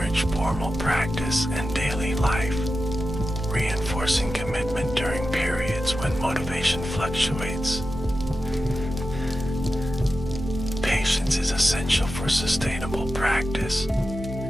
formal practice and daily life, reinforcing commitment during periods when motivation fluctuates. Patience is essential for sustainable practice.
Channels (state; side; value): normal; both; correlation 0.92